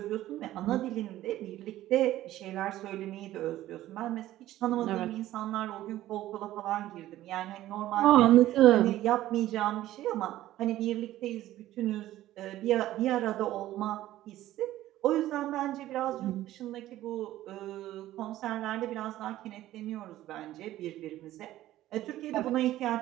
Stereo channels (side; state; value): left; quieter; 14.5 dB